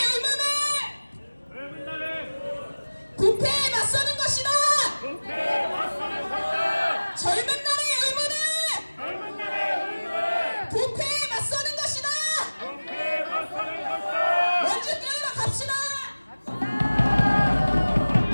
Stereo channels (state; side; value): inverted; both; correlation -1.00